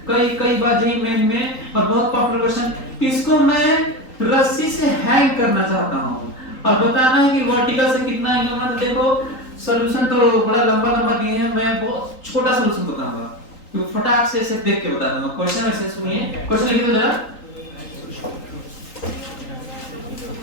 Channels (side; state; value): right; late; 3.8 ms